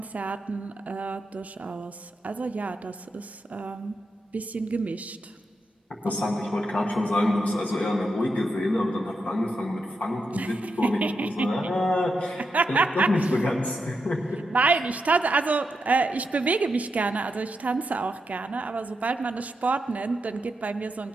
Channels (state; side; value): normal; both; correlation 0.85